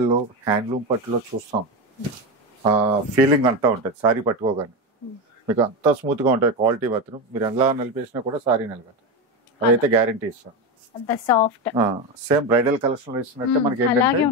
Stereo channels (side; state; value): both; normal; correlation 0.15